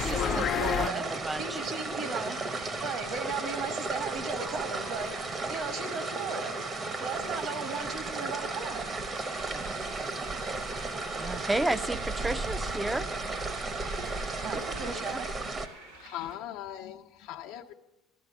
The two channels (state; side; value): normal; both; correlation 0.67